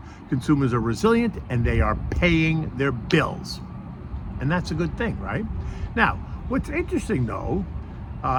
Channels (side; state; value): both; identical; correlation 1.00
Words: Consumers are resilient and they are paying their bills. And that's a good thing, right? Now, what's interesting though,